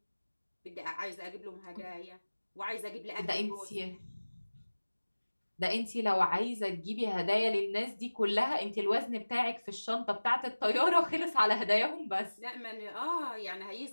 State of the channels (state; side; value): inverted; both; correlation -1.00